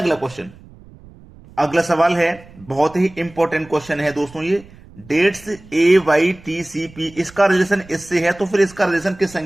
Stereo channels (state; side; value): noise; right; rumble, 22 dB below the sound